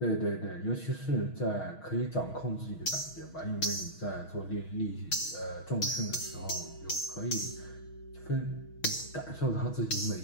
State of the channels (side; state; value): right; late; 6.3 ms